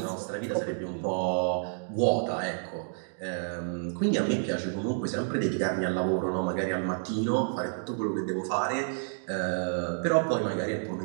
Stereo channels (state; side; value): silent; left; digital silence